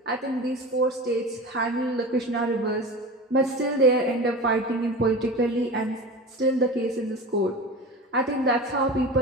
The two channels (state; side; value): normal; both; correlation 0.32